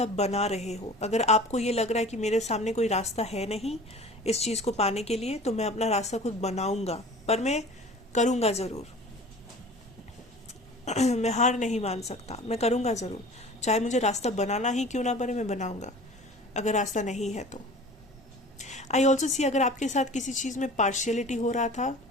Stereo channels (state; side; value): normal; both; correlation 0.42